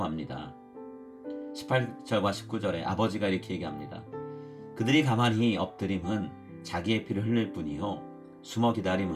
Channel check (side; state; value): both; identical; correlation 1.00